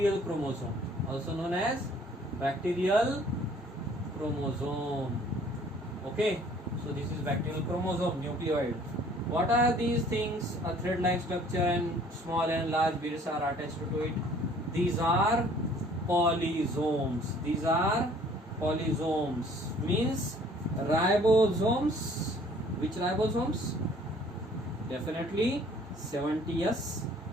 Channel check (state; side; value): normal; both; correlation 0.55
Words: chromosome. Also known as bacterial chromosome. Okay, so this is bacterial chromosome, nucleoid. What are these things? A thread-like structure and small and large beads are attached to it. These are polysomes. These are polysomes. Means ribosomes. Which ribosomes? Definitely 70S